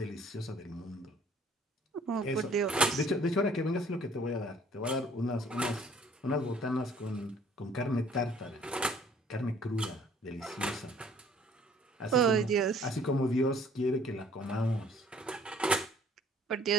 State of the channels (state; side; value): normal; both; correlation 0.56